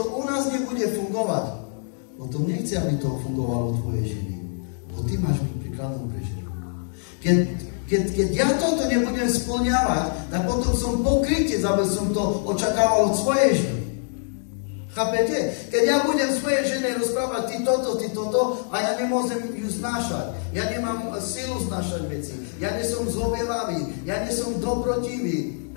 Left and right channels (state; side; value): silent; right; digital silence